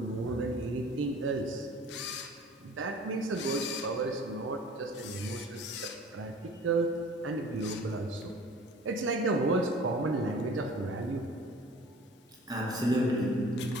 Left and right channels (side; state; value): both; normal; correlation 0.46